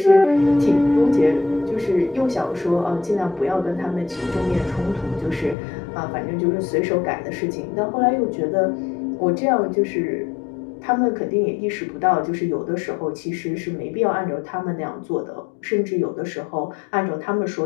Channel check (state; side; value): drops out; right; at 5.6 s